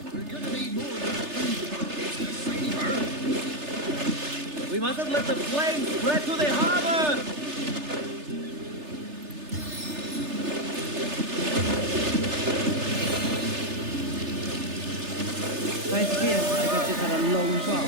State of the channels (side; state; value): left; late; 3.3 ms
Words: We mustn't let the flames spread to the harbor! I fear like I've just had a long